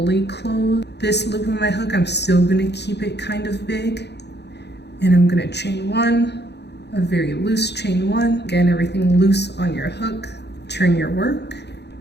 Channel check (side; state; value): right; late; 0.49 ms